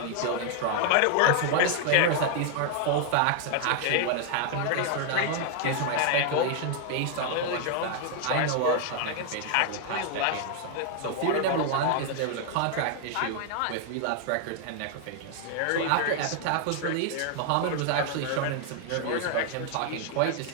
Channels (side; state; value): both; different; correlation 0.00